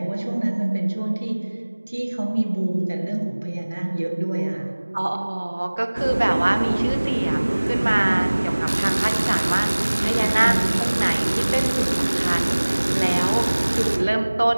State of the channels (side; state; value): both; inverted; correlation -1.00